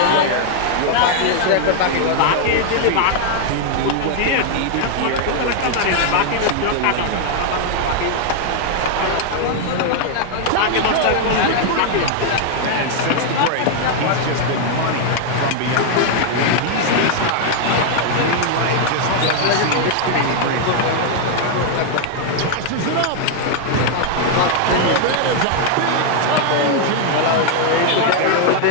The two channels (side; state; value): both; different; correlation 0.00